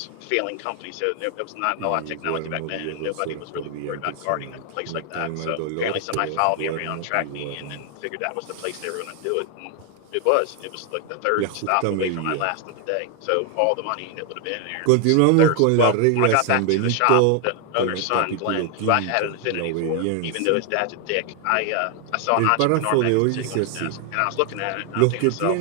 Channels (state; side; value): different; both; correlation 0.00